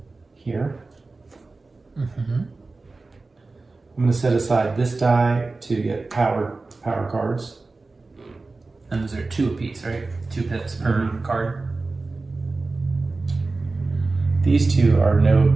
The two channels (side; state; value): left; quieter; 3.6 dB